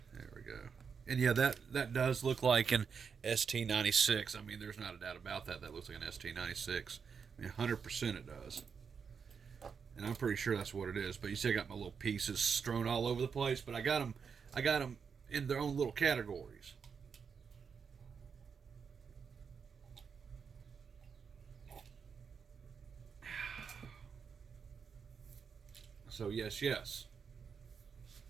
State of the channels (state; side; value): quieter; left; 6.2 dB